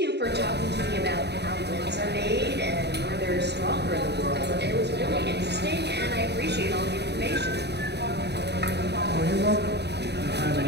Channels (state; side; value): late; left; 0.49 ms